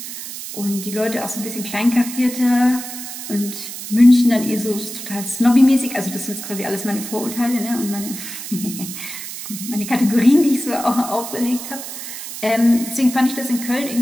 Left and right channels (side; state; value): right; noise; hiss, 9 dB below the sound